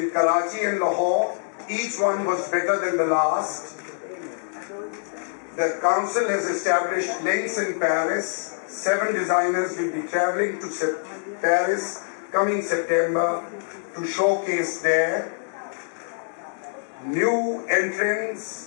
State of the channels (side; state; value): right; silent; digital silence